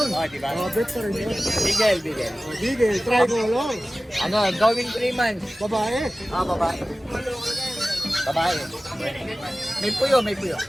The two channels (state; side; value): normal; both; correlation 0.97